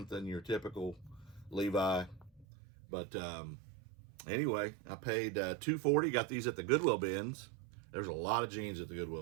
than your typical Levi. But anyway, I paid $2.40. Got these at the Goodwill bins. There's a lot of jeans at the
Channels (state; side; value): drops out; left; at 2.5 s